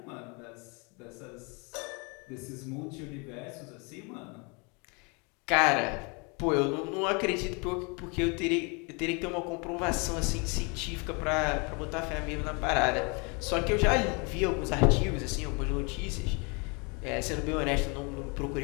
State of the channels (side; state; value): right; quieter; 31.6 dB